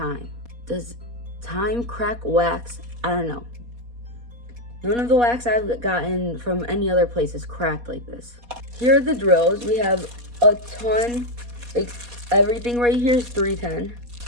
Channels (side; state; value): left; late; 4.2 ms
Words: Does time crack wax? I don't know. None of the wax I've gotten from any other place is cracked like this. Here are the drills. We have a ton, everything right here is 310.